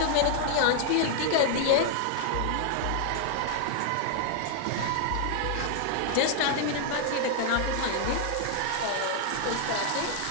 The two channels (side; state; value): both; different; correlation 0.00